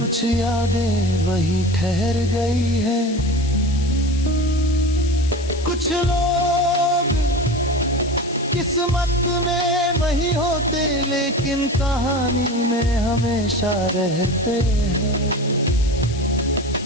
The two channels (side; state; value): left; noise; hiss, 15 dB below the sound